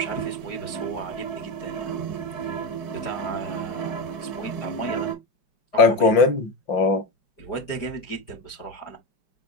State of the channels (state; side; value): late; right; 5.0 ms